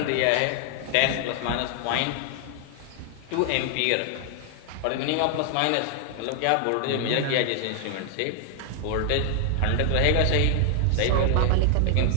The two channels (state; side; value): different; both; correlation 0.00